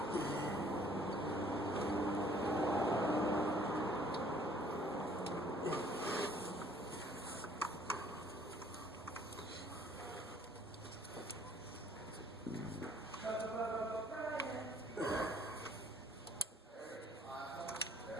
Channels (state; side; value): normal; both; correlation 0.58